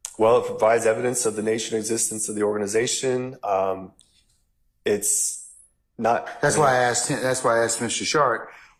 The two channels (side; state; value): both; identical; correlation 1.00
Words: Well, it provides evidence of the nature and existence of the organization. It's not. That's why I asked him. That's why I asked Mr. Sharp.